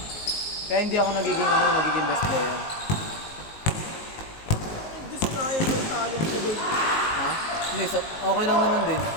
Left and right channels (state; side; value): late; right; 19 ms